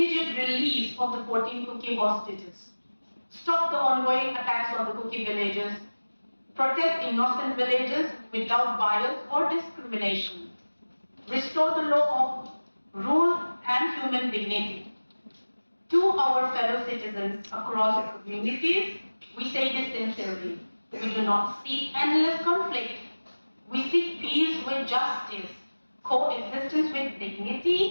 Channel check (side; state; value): both; inverted; correlation -1.00